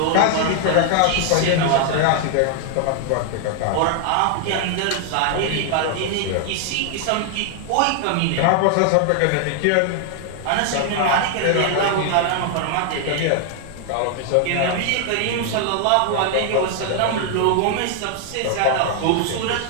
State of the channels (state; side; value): different; both; correlation 0.00